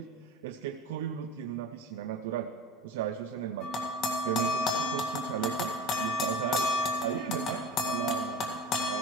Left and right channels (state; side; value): normal; both; correlation 0.34